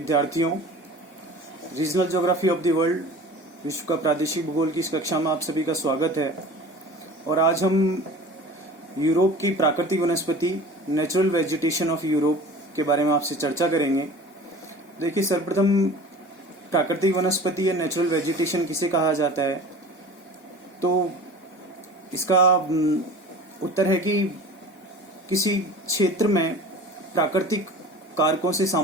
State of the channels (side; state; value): both; normal; correlation 0.40